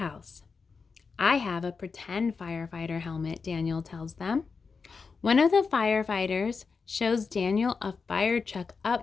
I have a pretend firefighter helmet, Daniel tells them. One of the firefighters shows Daniel a fire truck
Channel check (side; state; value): right; quieter; 5.0 dB